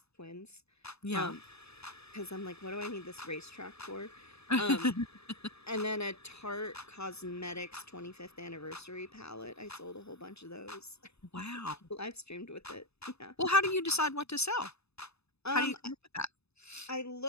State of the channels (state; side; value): late; right; 0.79 ms